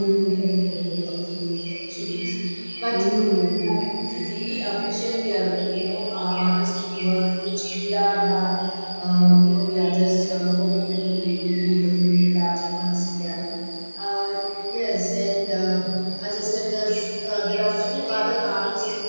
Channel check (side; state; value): both; inverted; correlation -1.00